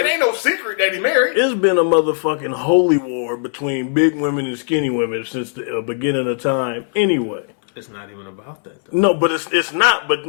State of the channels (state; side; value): silent; right; digital silence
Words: ain't no secret that he married. It's been a motherfucking holy war between big women and skinny women since the beginning of time anyway. It's not even about that, though. No, but it's not. But,